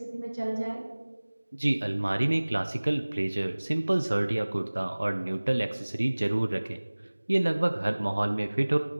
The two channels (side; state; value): both; inverted; correlation -1.00